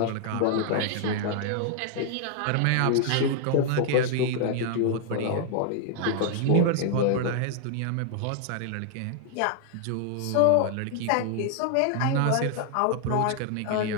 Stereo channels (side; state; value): both; different; correlation 0.00